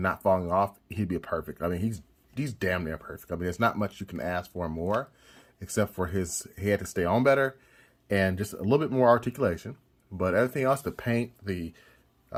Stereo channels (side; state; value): both; identical; correlation 1.00